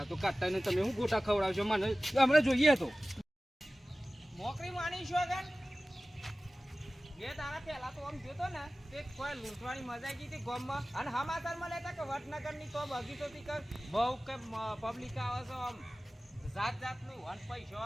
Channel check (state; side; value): normal; both; correlation 0.97